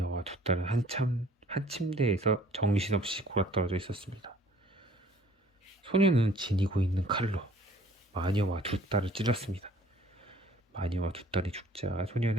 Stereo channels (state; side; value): normal; both; correlation 0.55